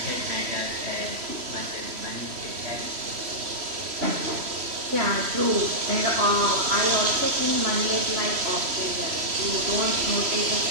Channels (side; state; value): left; late; 3.1 ms